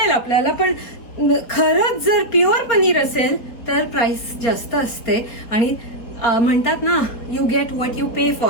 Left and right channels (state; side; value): late; right; 4.3 ms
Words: आपल्याला, पण खरंच जर प्युअर पनीर असेल तर प्राइस जास्त असते. आणि म्हणतात ना, you get what you pay